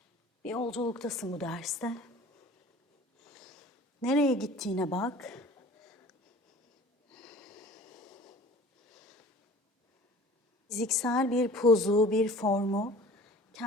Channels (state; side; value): normal; both; correlation 0.45